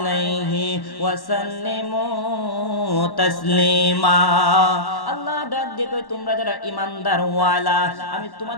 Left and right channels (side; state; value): right; late; 1.1 ms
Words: ওয়া সাল্লিমু তাসলিমা। আল্লাহ ডাক দিয়ে কই, তোমরা যারা ঈমানদার ওয়ালা, আমি